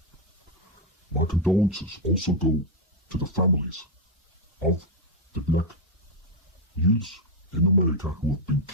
My condolences also go to the families of the black youths in America who have been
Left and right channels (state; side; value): normal; both; correlation 0.01